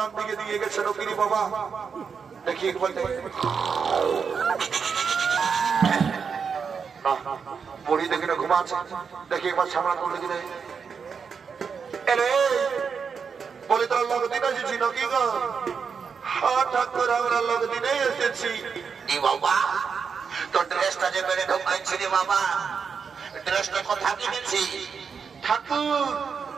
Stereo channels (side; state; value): left; quieter; 6.0 dB